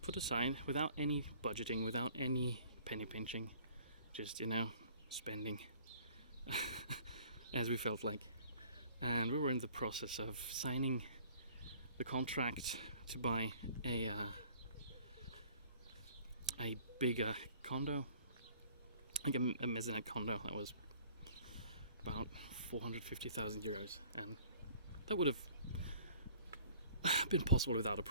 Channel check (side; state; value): both; inverted; correlation -0.53